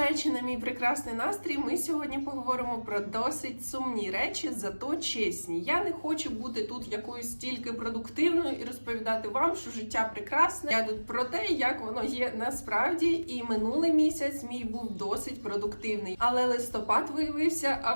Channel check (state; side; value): inverted; both; correlation -1.00